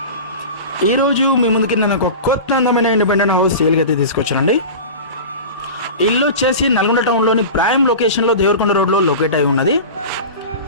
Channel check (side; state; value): both; inverted; correlation -0.31